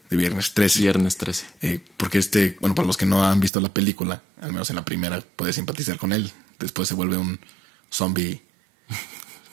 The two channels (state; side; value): drops out; left; at 3.5 s